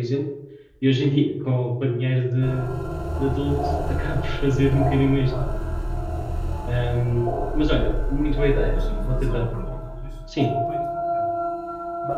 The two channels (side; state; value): both; identical; correlation 1.00